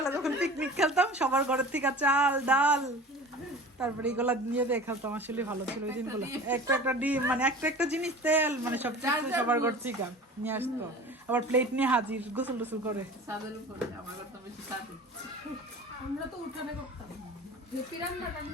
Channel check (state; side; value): normal; both; correlation 0.39